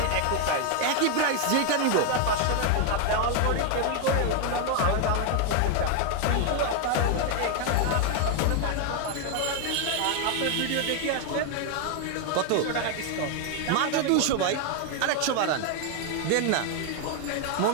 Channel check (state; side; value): different; both; correlation 0.01